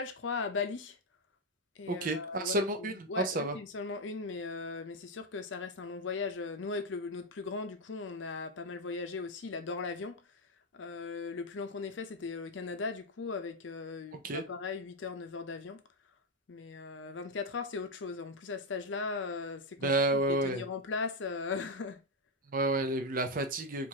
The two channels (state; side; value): normal; both; correlation 0.05